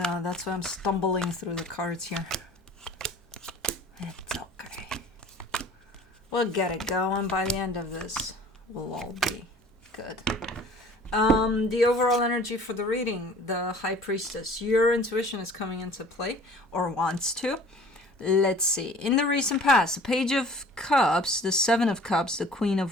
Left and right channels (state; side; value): normal; both; correlation 0.48